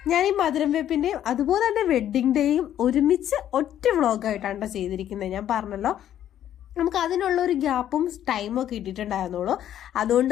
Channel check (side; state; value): right; quieter; 11.1 dB